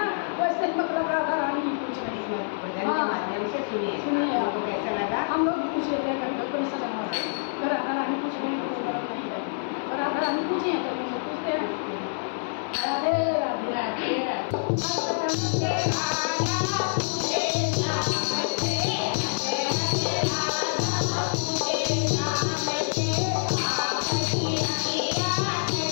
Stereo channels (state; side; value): silent; right; 57 dB below the other